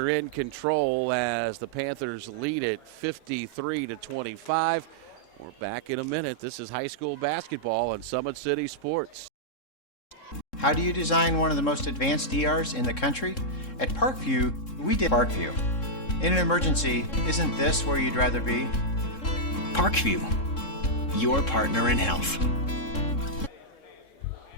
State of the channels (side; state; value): right; late; 3.7 ms